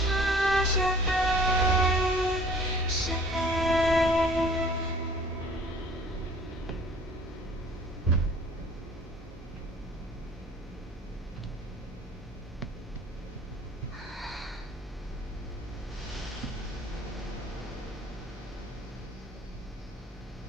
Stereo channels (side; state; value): both; normal; correlation 0.51